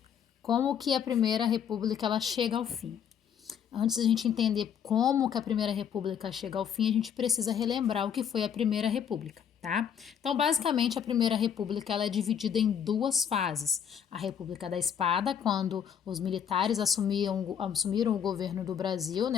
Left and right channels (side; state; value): right; quieter; 8.3 dB